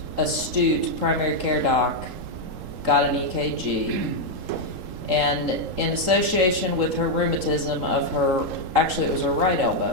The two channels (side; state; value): left; late; 3.8 ms